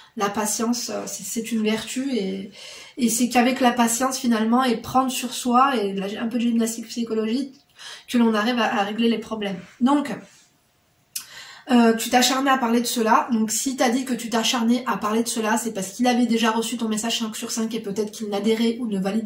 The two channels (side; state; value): both; identical; correlation 1.00